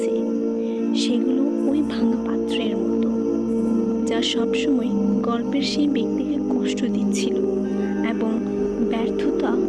সেগুলো ওই ভাঙা পাত্রের মতো, যা সবসময় গল্পের সেই ব্যক্তিকে কষ্ট দিচ্ছিল এবং ব্যর্থতা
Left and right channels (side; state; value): both; identical; correlation 1.00